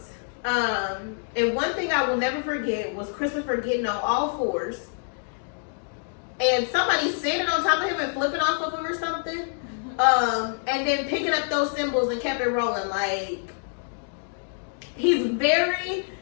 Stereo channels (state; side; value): silent; right; digital silence